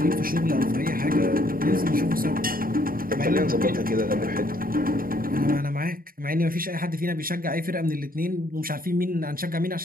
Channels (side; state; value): left; late; 0.42 ms